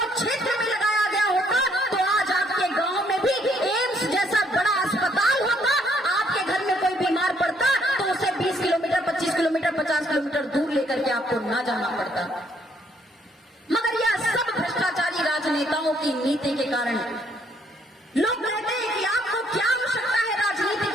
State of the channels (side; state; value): both; normal; correlation 0.68